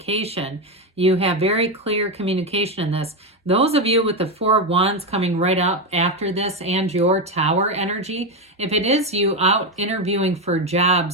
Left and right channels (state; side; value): normal; both; correlation 0.10